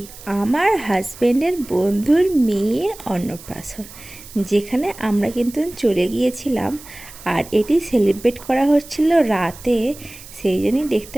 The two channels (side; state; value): right; noise; hiss, 18 dB below the sound